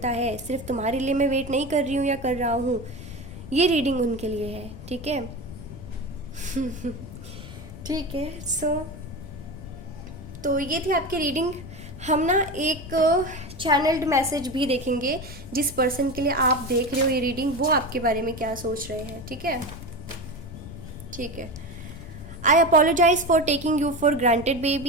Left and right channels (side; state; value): left; noise; rumble, 13 dB below the sound